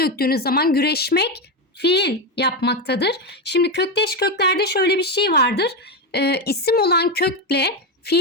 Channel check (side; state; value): both; normal; correlation 0.11